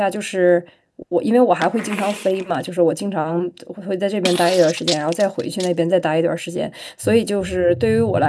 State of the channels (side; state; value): both; identical; correlation 1.00